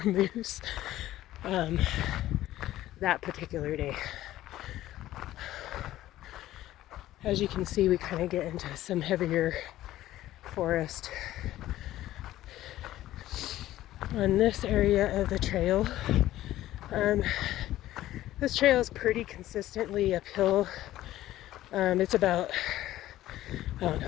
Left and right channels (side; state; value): right; quieter; 14.5 dB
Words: moose that particular day. As you can see, we kind of get into some heavier forest on this area of the trail. This trail is pretty consistently uphill. It's about,